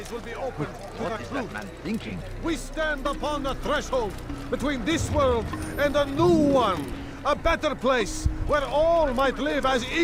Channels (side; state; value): both; identical; correlation 1.00